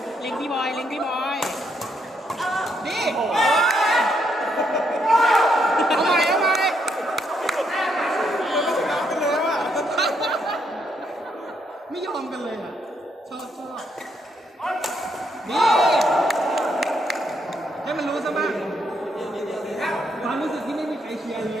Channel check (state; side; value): normal; both; correlation 0.75